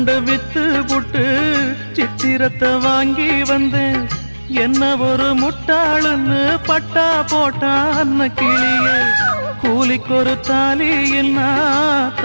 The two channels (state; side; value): inverted; both; correlation -1.00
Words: வித்து புட்டு சித்திரத்தை வாங்கி வந்தேன். என்ன ஒரு முட்டாளுன்னு பட்டா போட்டான் அன்ன கிளியே. கூலிக்கு ஒரு தாலி என்ன